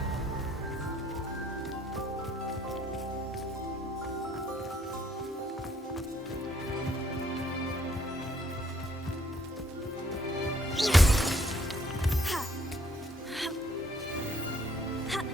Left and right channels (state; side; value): normal; both; correlation 0.65